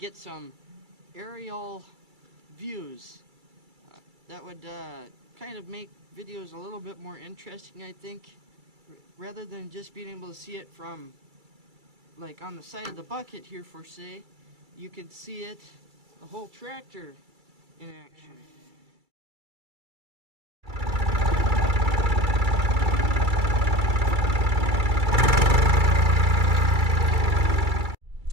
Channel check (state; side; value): late; left; 2.3 ms